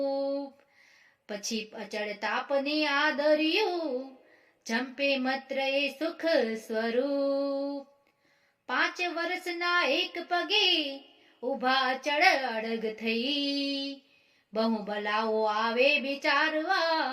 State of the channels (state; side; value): identical; both; correlation 1.00